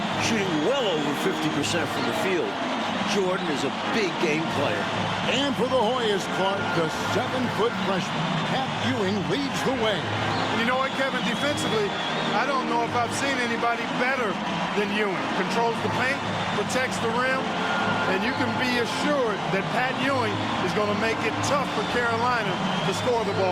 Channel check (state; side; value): identical; both; correlation 1.00